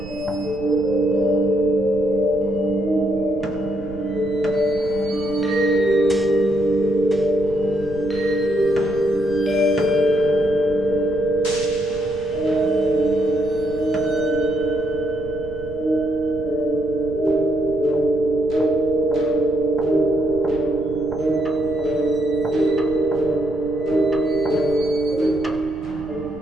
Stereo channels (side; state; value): right; noise; rumble, 15 dB below the sound